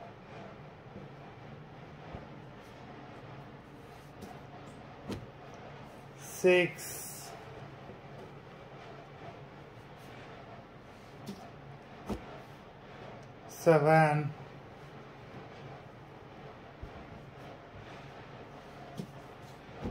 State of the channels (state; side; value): identical; both; correlation 1.00